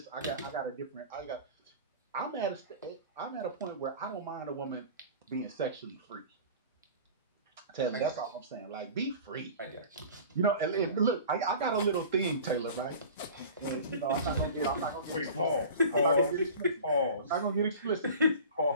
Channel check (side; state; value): both; inverted; correlation -0.39